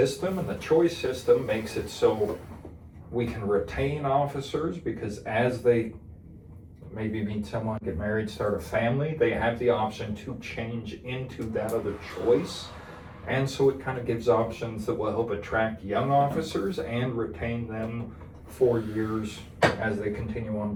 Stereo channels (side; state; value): both; identical; correlation 1.00